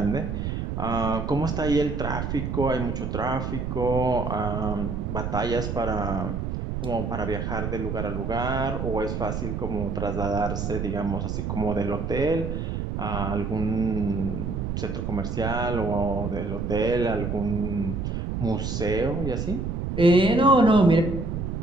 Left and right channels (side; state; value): right; noise; rumble, 3 dB below the sound